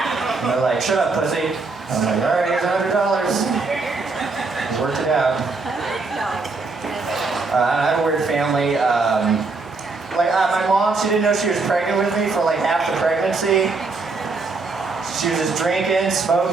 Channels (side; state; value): left; quieter; 3.9 dB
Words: they're like, shut up, pussy. I'm like, all right, here's $100. Just worked it out. I have a weird family. My mom, she didn't know she was pregnant with me for like half the pregnancy. She was just drinking,